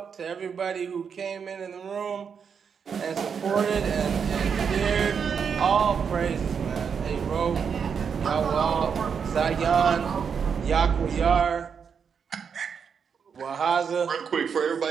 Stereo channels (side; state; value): left; quieter; 6.7 dB